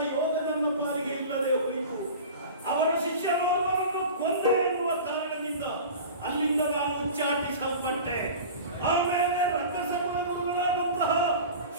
ಯೋಗ ನನ್ನ ಪಾಲಿಗೆ ಇಲ್ಲದೆ ಹೋಯಿತು. ಅವರ ಶಿಷ್ಯನೋರ್ವರನ್ನು ಕೊಂದೆ ಎನ್ನುವ ಕಾರಣದಿಂದ ಅಲ್ಲಿಂದ ನಾನು ಉಚ್ಚಾಟಿಸಲ್ಪಟ್ಟೆ. ಆಮೇಲೆ ರಕ್ಕಸಗಳ ಗುರುಗಳಾದಂತಹ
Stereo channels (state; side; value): inverted; both; correlation -0.36